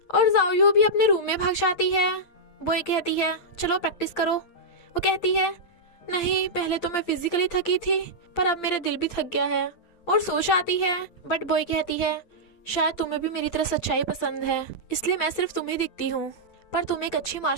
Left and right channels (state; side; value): late; right; 8.7 ms